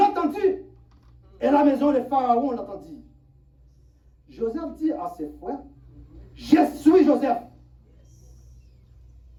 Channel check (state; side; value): identical; both; correlation 1.00